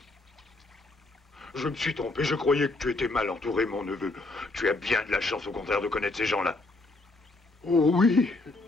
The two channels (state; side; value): quieter; right; 3.1 dB